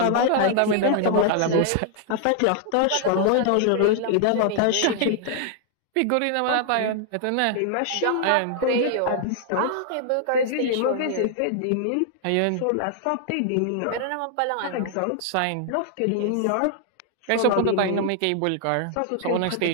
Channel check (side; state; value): both; different; correlation 0.00